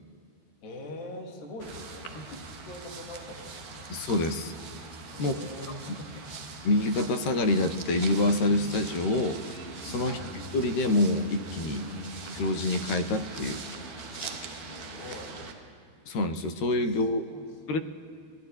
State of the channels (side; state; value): right; late; 13 ms